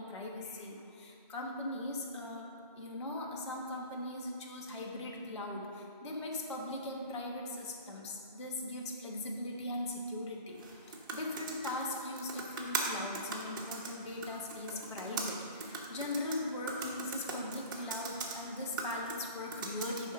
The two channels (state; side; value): inverted; both; correlation -0.35